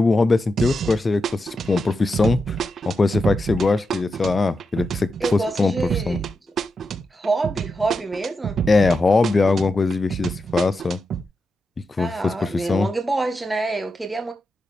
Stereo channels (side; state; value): both; normal; correlation 0.87